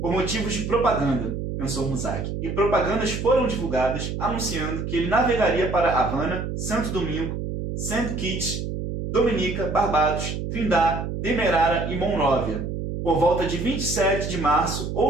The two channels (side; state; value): right; noise; hum, 4 dB below the sound